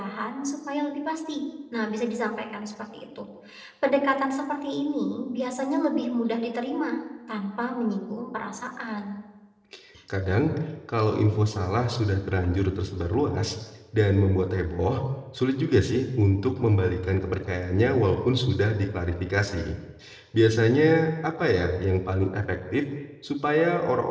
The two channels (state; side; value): identical; both; correlation 1.00